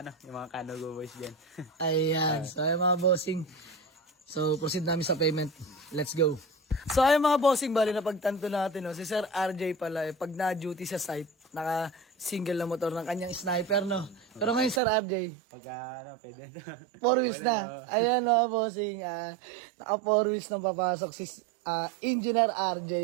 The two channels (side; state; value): left; drops out; at 14.8 s